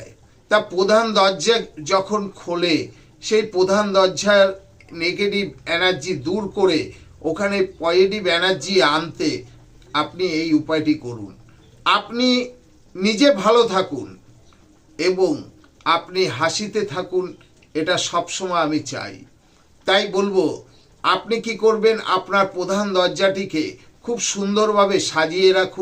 তা প্রধান দরজা যখন খোলে, সেই প্রধান দরজার নেগেটিভ এনার্জি দূর করে ওখানে পজিটিভ এনার্জি আনতে আপনি এই উপায়টি করুন। আপনি নিজে ভালো থাকুন এবং আপনি হাসিতে থাকুন, এটা সবসময় আমি চাই। তাই বলবো, আপনি কি করবেন, আপনার প্রধান দরজাটিকে খুব সুন্দরভাবে সাজিয়ে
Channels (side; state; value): both; identical; correlation 1.00